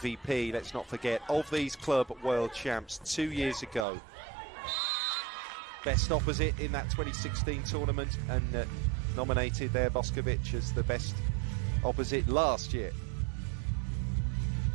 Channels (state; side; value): drops out; left; at 3.9 s